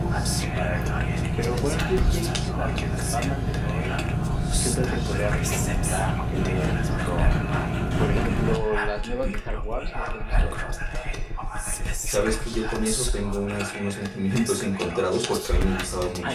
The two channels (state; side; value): identical; both; correlation 1.00